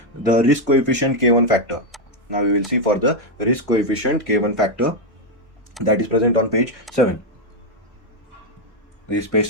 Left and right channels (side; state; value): both; normal; correlation 0.03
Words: The risk coefficient K1 factor. Now we will see for the risk coefficient K1 factor, that is present on page 7. This is page